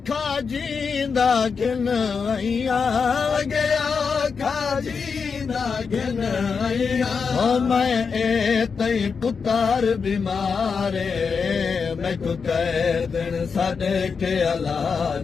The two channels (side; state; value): right; quieter; 5.5 dB